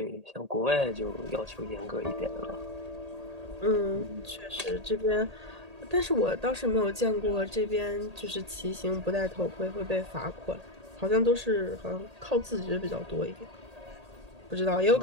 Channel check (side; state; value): left; late; 1.8 ms